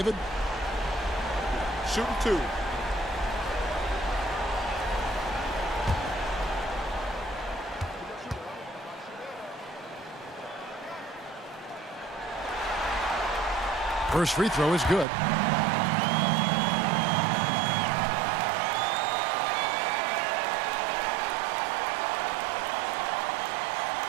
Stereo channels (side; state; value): left; drops out; at 15.1 s